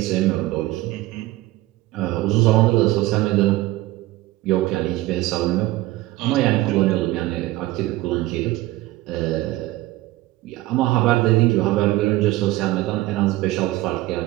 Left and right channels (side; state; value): left; quieter; 17.6 dB